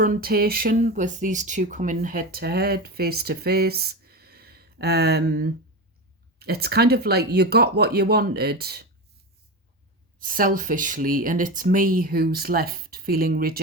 with these two coming head to head, face to face. It's kind of like you got what you wanted selfishly, and it's me who's left feeling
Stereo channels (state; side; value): normal; both; correlation 0.22